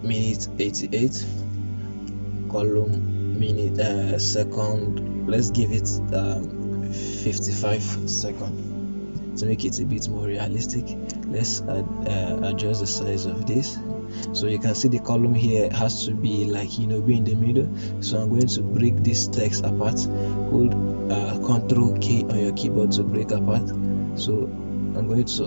minute 88, column minute second. Let's give it 55 seconds to make it a bit more realistic. Let's adjust the size of this. So you can see the column here has to be like, you know, be in the middle. So I'm going to break this text apart. Hold Ctrl K on your keyboard to break apart. So I'm going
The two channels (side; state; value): both; inverted; correlation -1.00